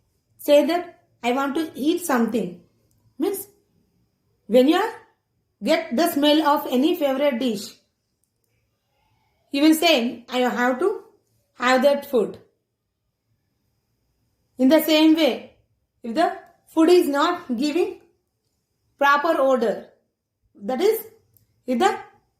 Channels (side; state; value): both; identical; correlation 1.00